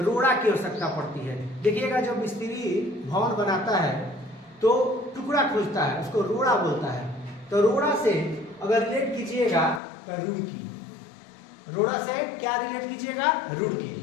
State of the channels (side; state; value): right; drops out; at 9.8 s